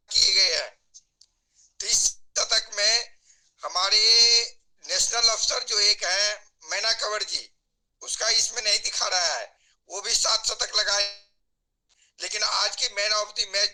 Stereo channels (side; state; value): both; identical; correlation 1.00